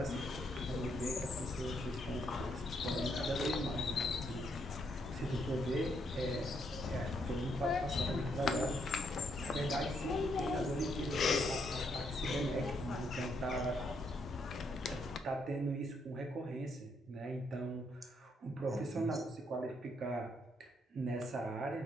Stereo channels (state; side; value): normal; both; correlation 0.75